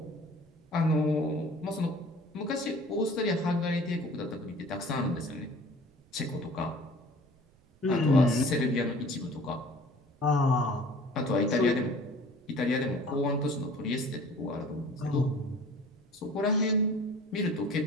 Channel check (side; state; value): right; noise; rumble, 30 dB below the sound